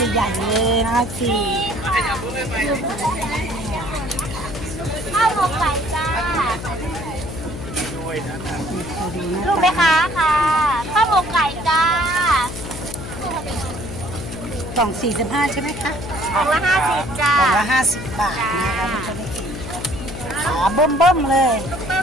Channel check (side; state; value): left; noise; hum, 9 dB below the sound